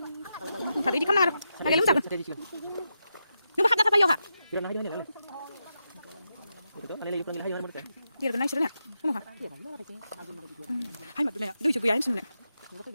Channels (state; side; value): inverted; both; correlation -0.86